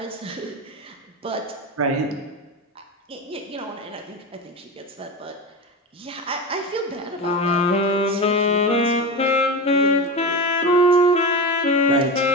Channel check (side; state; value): both; normal; correlation 0.21